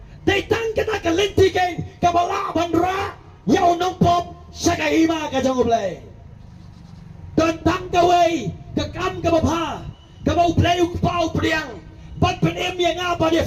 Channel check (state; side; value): identical; both; correlation 1.00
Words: datang kita kelanti kan kebala bandra yau nong pop sakahima ka jong play Don tang gaway, kakam gabapa, gabaw play pau priang, ban penem yang apa dia